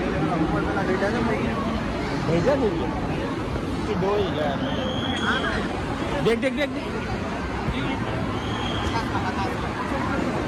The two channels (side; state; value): both; identical; correlation 1.00